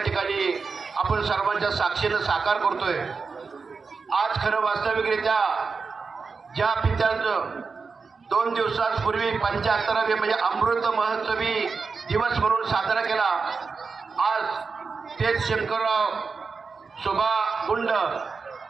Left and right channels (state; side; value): quieter; left; 4.8 dB